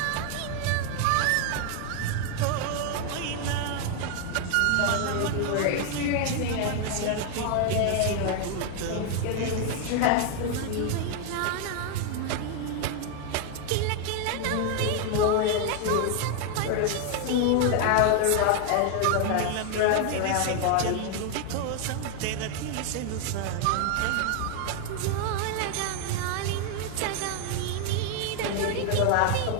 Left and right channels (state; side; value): different; both; correlation 0.00